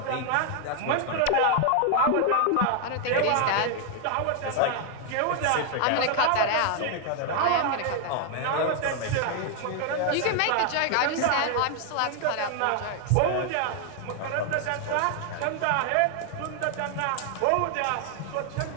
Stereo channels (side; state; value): both; different; correlation 0.00